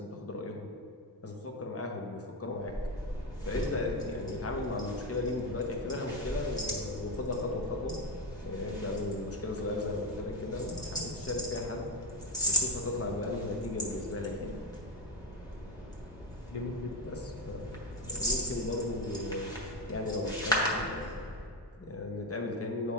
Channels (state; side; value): normal; both; correlation 0.11